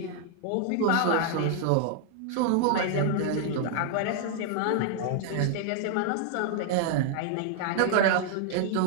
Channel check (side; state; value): both; different; correlation 0.00